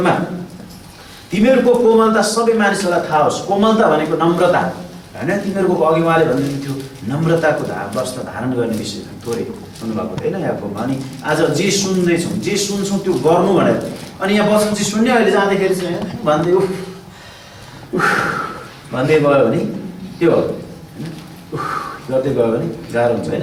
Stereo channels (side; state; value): both; identical; correlation 1.00